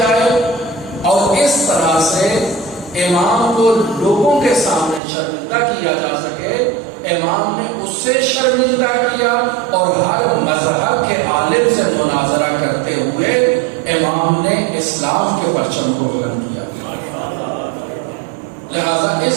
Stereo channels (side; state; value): left; drops out; at 5.0 s